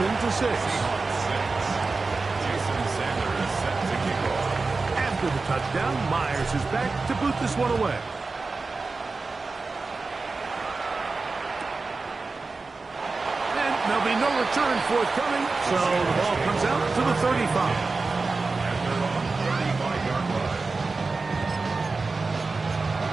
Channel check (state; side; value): quieter; left; 3.9 dB